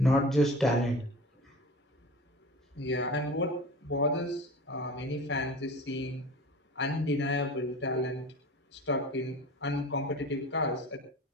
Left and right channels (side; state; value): both; normal; correlation 0.37